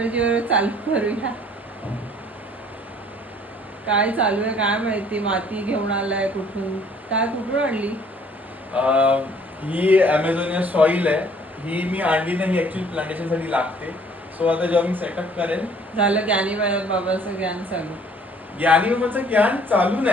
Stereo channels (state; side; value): normal; both; correlation 0.57